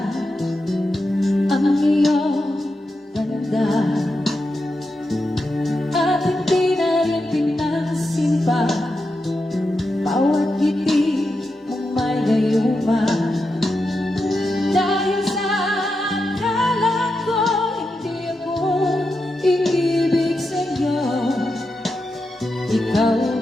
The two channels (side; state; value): both; normal; correlation 0.88